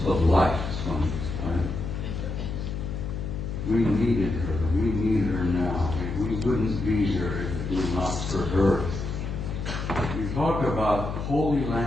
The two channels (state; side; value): noise; left; hum, 5 dB below the sound